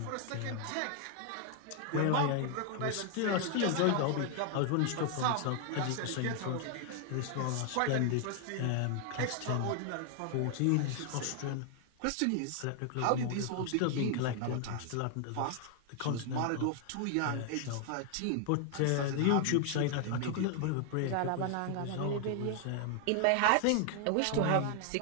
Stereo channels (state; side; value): different; both; correlation 0.00